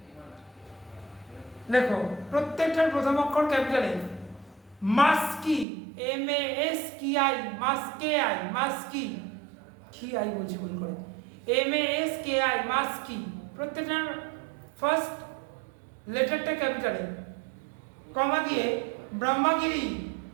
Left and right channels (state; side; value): drops out; left; at 5.7 s